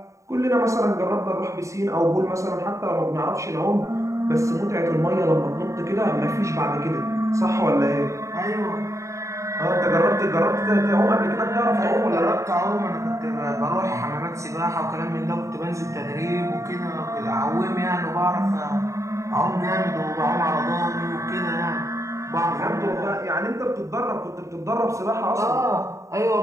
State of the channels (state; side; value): late; left; 0.15 ms